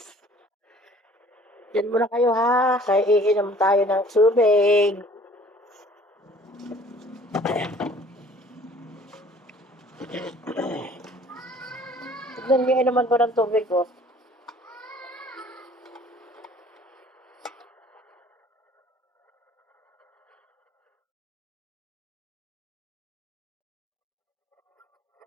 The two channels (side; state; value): both; normal; correlation 0.52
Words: Diyan muna kayo, ha? Kaya iinom tayo ng tubig. Tignan niyo naman ko ng tubig, oh.